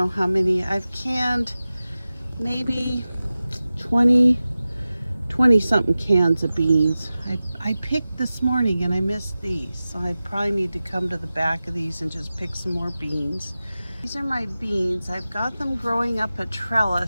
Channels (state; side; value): inverted; both; correlation -0.95